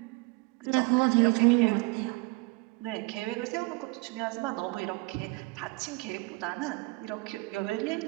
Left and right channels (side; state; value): left; quieter; 26.1 dB